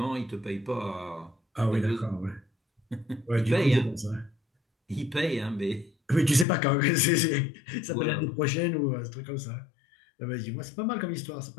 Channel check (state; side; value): drops out; right; at 6.5 s